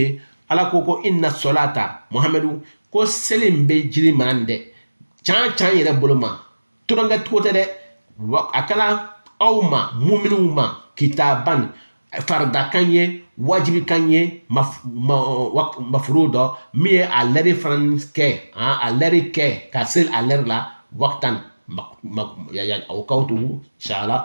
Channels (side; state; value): both; inverted; correlation -1.00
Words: ala koko inna salata muhammadu ko selim be jiri mande chan yere boloma turanga tote de akala awma mu'minuma kitaban farda kanye wajibi kanye mafrudo mi aleri franske aleri ke kasel aler la waqtan ya awqatu